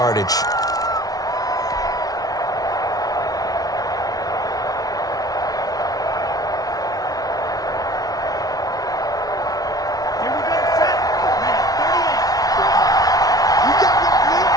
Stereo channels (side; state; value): right; late; 0.18 ms